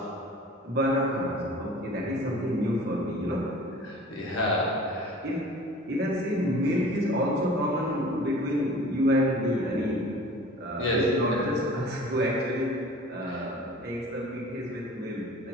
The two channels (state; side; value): normal; both; correlation 0.44